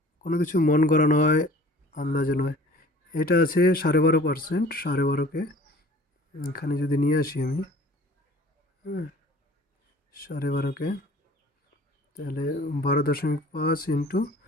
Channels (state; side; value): normal; both; correlation 0.48